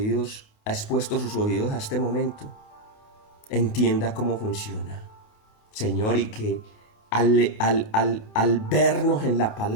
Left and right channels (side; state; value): right; late; 28 ms